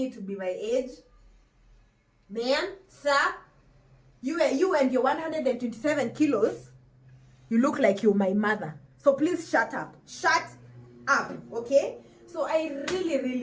to be my age, man, sir, you and your 127 kilos, you look like you're my mother. So please shut up. Shut up, okay? So I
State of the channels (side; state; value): both; identical; correlation 1.00